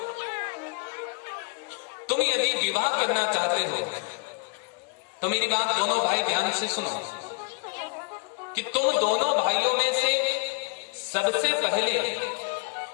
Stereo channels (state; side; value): quieter; right; 33.6 dB